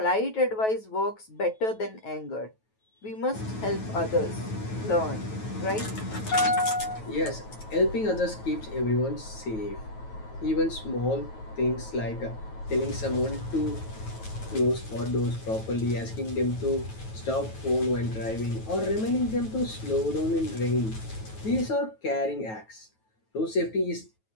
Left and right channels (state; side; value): late; right; 9.2 ms